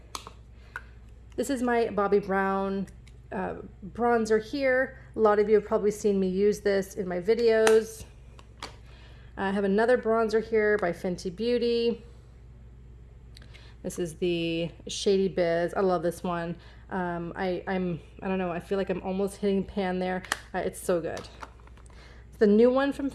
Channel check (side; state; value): both; identical; correlation 1.00